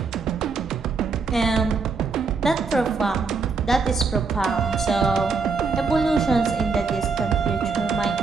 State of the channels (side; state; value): left; quieter; 4.7 dB